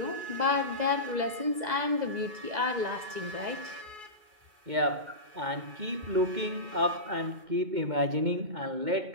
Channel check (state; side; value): late; left; 2.0 ms